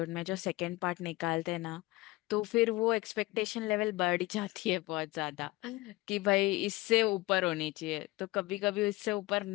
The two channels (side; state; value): right; quieter; 20.5 dB